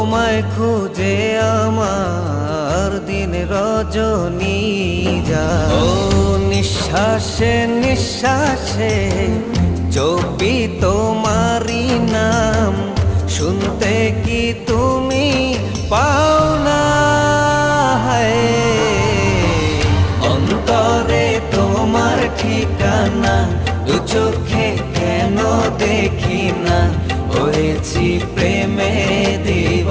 খুঁজে আমার দিন রজনী যায়। ও নিঃশ্বাসে নিঃশ্বাসে জপি তোমারি নাম, শুনতে কি তুমি পাও না? অন্তরে তোমার ঠিকানা, দু চোখে কেন দেখি না? হয়েছি প্রেমে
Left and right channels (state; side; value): identical; both; correlation 1.00